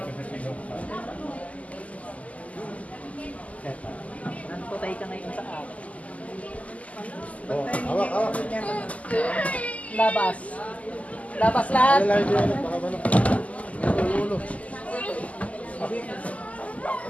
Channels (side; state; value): right; late; 0.070 ms